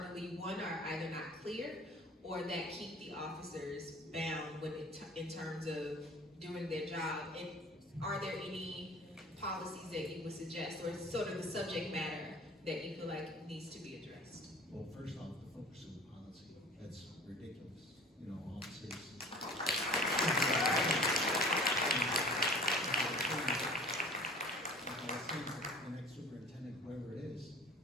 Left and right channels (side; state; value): both; normal; correlation 0.45